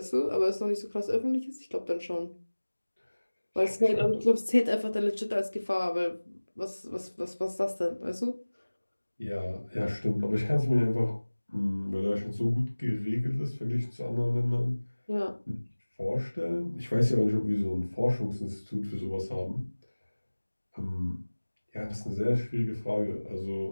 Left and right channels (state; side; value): inverted; both; correlation -1.00